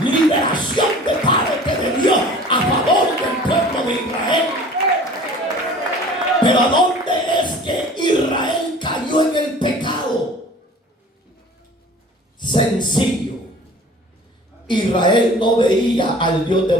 liberación de parte de Dios a favor del pueblo de Israel. Pero ¿a dónde es que Israel cayó en el pecado? Sencillo. Israel no veía al Dios de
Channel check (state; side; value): normal; both; correlation 0.45